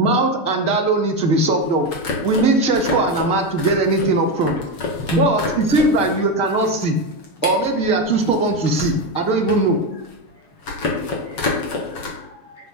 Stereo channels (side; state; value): right; late; 7.1 ms